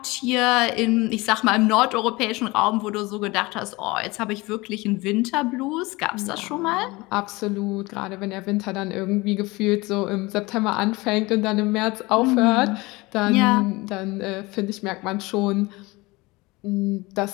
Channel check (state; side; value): quieter; right; 22.7 dB